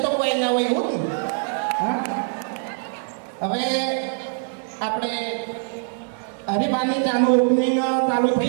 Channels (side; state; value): left; silent; 57 dB below the other